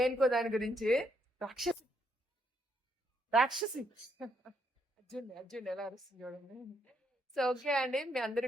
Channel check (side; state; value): both; normal; correlation 0.75